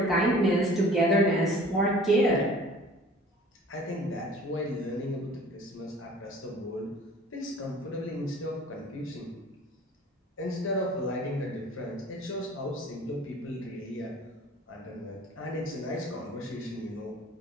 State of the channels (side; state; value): both; normal; correlation 0.48